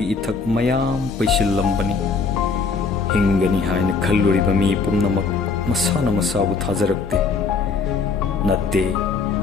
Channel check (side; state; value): right; quieter; 4.7 dB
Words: इथक मयाम पैसिल्लंबनी हिंगनी हायना खल्लुरिबा मी पुमनमक मसाना मसाबु थाजरक्ते नत्ते